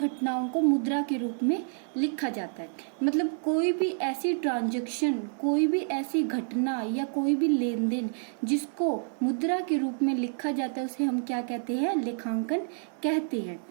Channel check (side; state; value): left; silent; 59 dB below the other